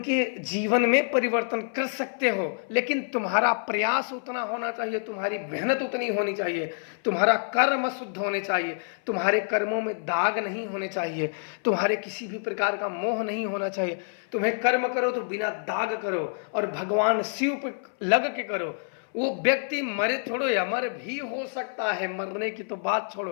जीवन में परिवर्तन कर सकते हो, लेकिन तुम्हारा प्रयास उतना होना चाहिए, तुम्हारी मेहनत उतनी होनी चाहिए, तुम्हारा कर्म शुद्ध होने चाहिए, तुम्हारे कर्मों में दाग नहीं होने चाहिए, तुम्हारे किसी भी प्रकार का मोह नहीं होना चाहिए। तुम्हें कर्म करो तो बिना दाग करो और भगवान शिव पे लग के करो। वो व्यक्ति मरे छोड़ो या मर भी हो सकता है, मरने की तो बात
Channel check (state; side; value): silent; right; 57 dB below the other